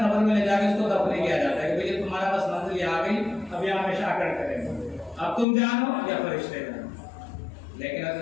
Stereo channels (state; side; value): drops out; right; at 5.5 s